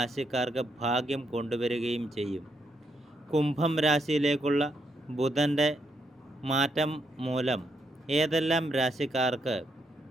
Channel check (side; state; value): both; normal; correlation 0.78